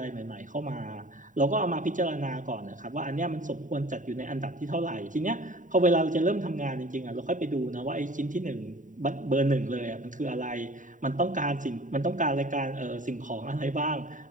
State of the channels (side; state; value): left; late; 0.37 ms